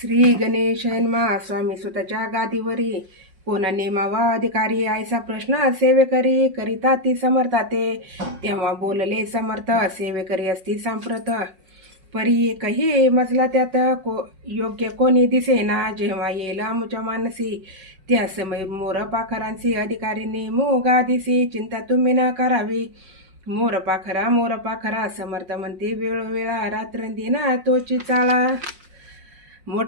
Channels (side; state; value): left; late; 5.5 ms